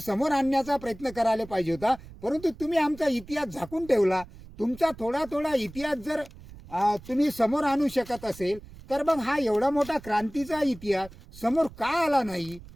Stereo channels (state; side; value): noise; right; rumble, 18 dB below the sound